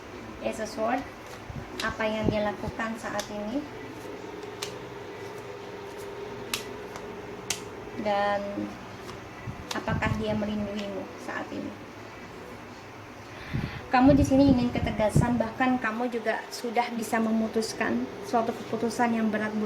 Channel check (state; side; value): identical; both; correlation 1.00